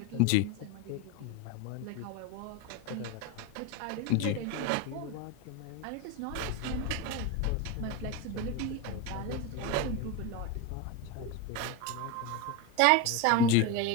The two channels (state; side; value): different; both; correlation 0.04